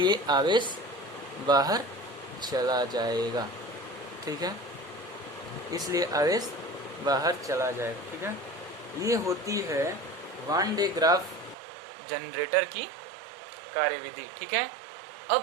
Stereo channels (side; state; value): left; drops out; at 11.6 s